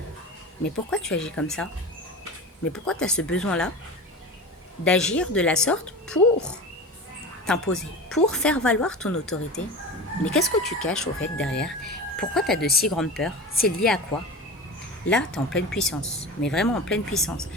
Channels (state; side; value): normal; both; correlation 0.30